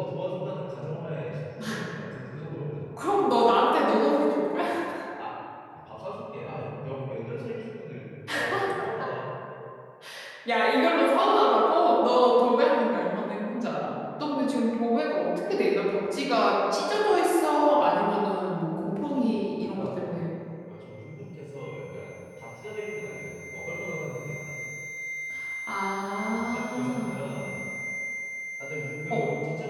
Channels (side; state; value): both; identical; correlation 1.00